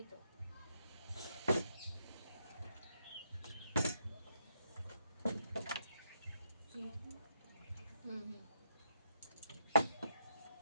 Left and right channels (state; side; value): inverted; both; correlation -0.78